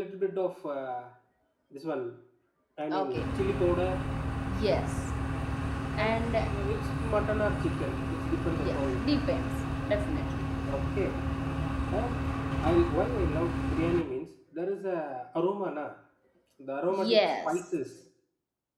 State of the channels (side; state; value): both; identical; correlation 1.00